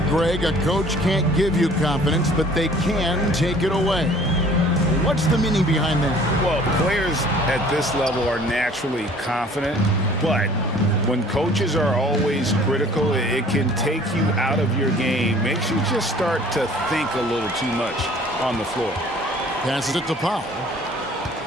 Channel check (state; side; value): normal; both; correlation 0.52